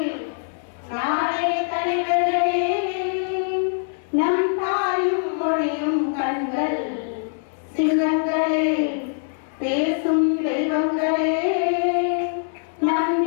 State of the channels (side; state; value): right; silent; 63 dB below the other